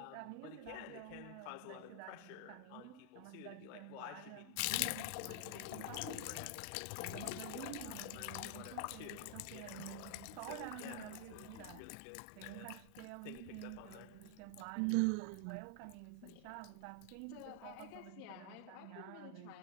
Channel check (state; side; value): different; both; correlation 0.00